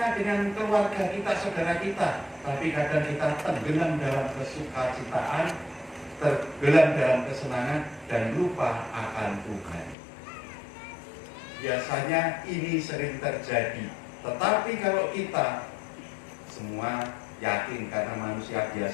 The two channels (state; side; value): drops out; right; at 10.0 s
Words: dengan keluarga kita, saudara kita, tapi kadang kita tenggelam dalam kesukacitaan, tenggelam dalam kesenangan dan lupa akan Tuhan. Biasanya ini sering terjadi. Tetapi kalau kita semua yakin karena manusia